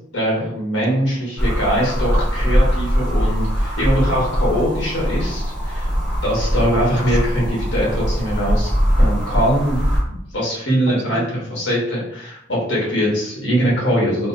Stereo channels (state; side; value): normal; both; correlation 0.70